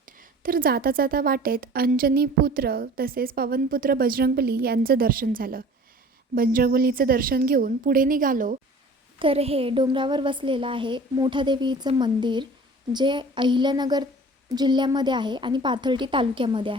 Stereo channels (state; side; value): normal; both; correlation 0.45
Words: तर जाता जाता वाटेत अंजनीपुत्र तसेच पवनपुत्र बजरंगबली यांचं दर्शन झालं. बजरंगबलीचं दर्शन घेऊन पुढे निघालो तर हे डोंगरावर वसलेलं आहे मोठादेवीचं मंदिर, जे अहिल्यानगर जिल्ह्यामध्ये आहे आणि पाथर्डी तालुक्यामध्ये